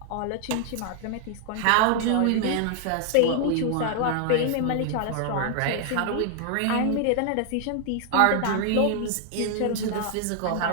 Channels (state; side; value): different; both; correlation 0.00